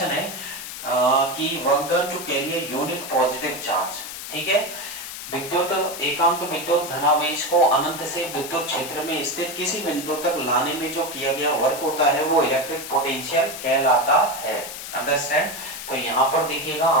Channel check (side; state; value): left; noise; hiss, 9 dB below the sound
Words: है कि work done to carry a unit positive charge. ठीक है, विद्युत एकांक विद्युत धनावेश को अनंत से विद्युत क्षेत्र में स्थित किसी बिंदु तक लाने में जो किया गया वर्क होता है वो इलेक्ट्रिक पोटेंशियल कहलाता है। अंडरस्टैंड। तो यहाँ पर देखिएगा